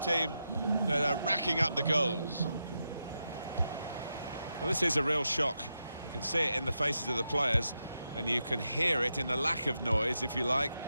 that are racking up the goals. Well, this is a real shock. You can see it in the faces of the players, and you can hear it in the lack of noise, if you like,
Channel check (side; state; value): both; inverted; correlation -0.87